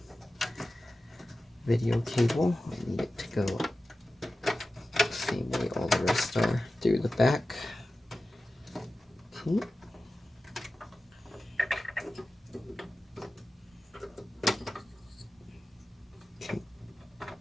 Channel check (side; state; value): both; normal; correlation 0.94